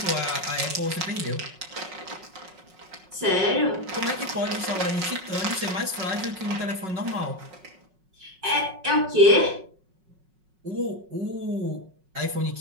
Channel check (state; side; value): late; left; 5.4 ms